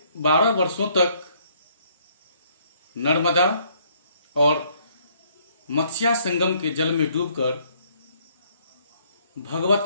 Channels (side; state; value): both; inverted; correlation -0.66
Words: 12 वर्षों तक नर्मदा और मत्स्या संगम के जल में डूबकर